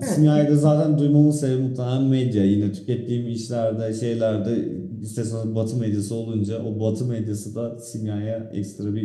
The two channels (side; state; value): both; identical; correlation 1.00